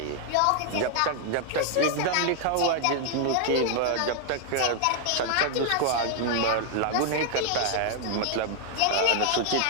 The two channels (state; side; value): different; both; correlation 0.00